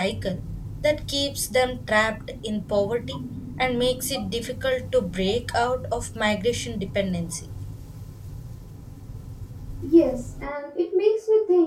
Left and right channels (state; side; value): identical; both; correlation 1.00